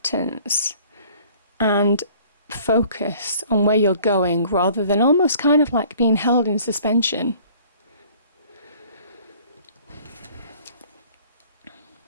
and focus on where you're going rather than almost kind of like being held in suspension.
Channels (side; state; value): both; inverted; correlation -0.53